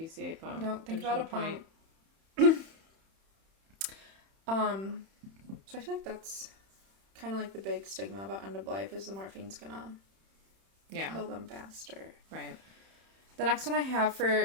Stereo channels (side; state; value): left; late; 31 ms